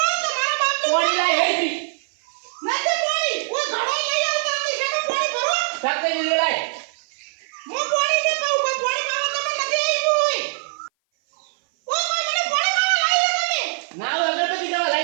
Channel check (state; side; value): silent; left; 58 dB below the other